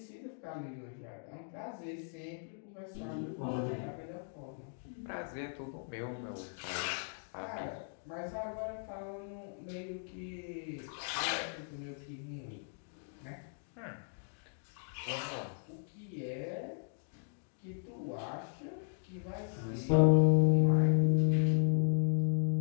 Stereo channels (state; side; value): silent; right; digital silence